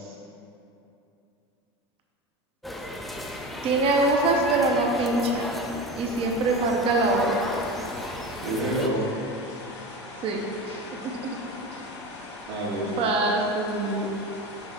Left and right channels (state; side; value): normal; both; correlation 0.27